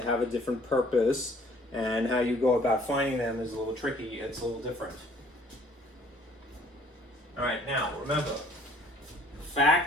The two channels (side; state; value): both; normal; correlation 0.57